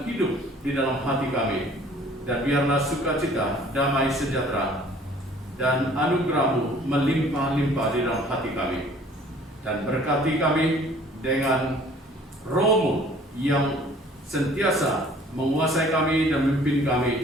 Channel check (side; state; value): both; normal; correlation 0.53